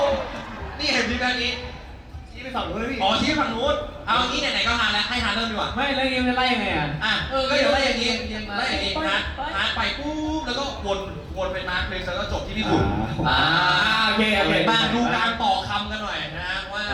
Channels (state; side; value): identical; both; correlation 1.00